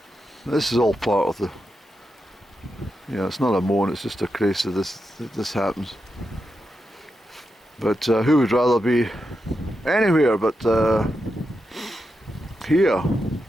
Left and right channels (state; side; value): normal; both; correlation 0.87